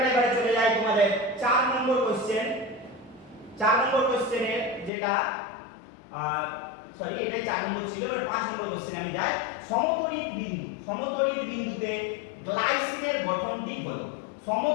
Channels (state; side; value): drops out; right; at 4.9 s